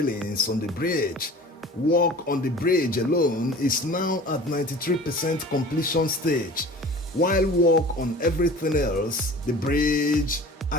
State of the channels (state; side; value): normal; both; correlation 0.41